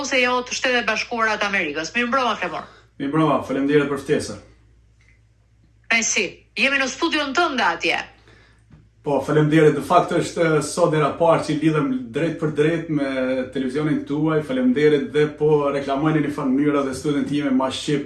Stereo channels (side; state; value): both; identical; correlation 1.00